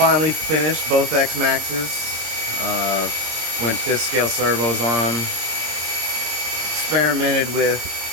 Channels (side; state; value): left; late; 26 ms